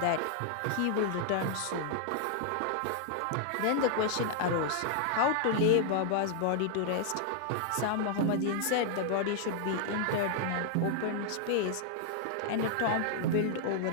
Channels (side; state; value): both; different; correlation -0.01